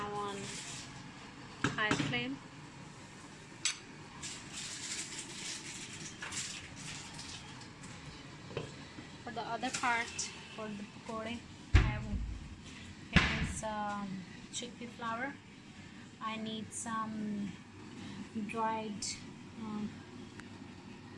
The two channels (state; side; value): identical; both; correlation 1.00